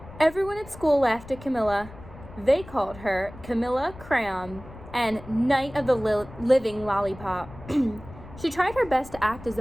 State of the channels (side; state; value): left; noise; rumble, 17 dB below the sound